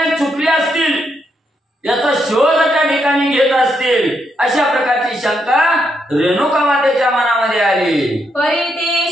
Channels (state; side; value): normal; both; correlation 0.79